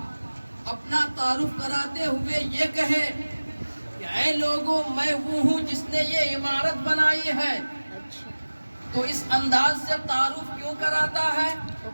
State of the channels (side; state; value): both; inverted; correlation -1.00